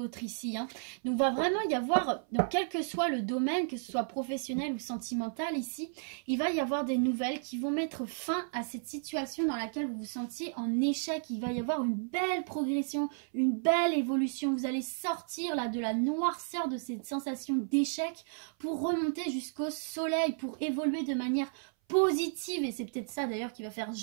ici, hein. Donc va vraiment y avoir, donc quel que soit le domaine, que ce soit professionnel ou sentimental ici, il va y avoir des nouvelles qui vont mettre fin à cette situation dans laquelle vous vous sentiez en échec. Il va y avoir une belle progression, une belle évolution. Vous allez sortir là de la noirceur de cette sensation d'échec pour remonter jusqu'au soleil, pour évoluer de manière positive, et c'est peut-être ça d'ailleurs qui va faire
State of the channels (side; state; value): left; silent; 56 dB below the other